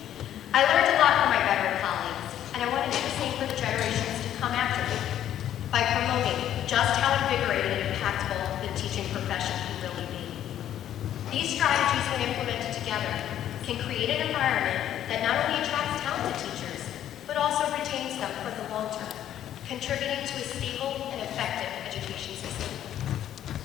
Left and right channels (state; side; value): quieter; right; 11.1 dB